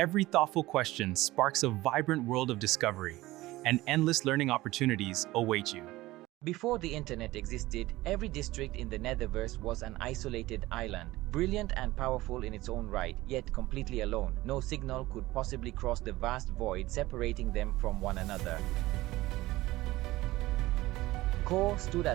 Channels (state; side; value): quieter; left; 18.2 dB